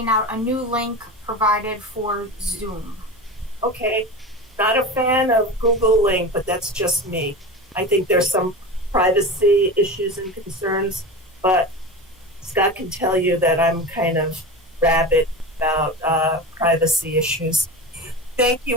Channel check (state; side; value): normal; both; correlation 0.27